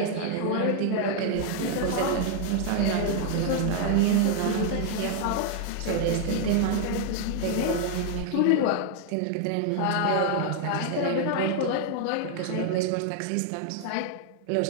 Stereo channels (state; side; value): different; both; correlation 0.00